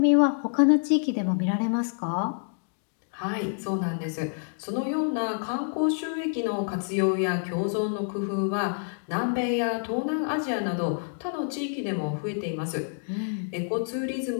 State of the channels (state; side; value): silent; right; digital silence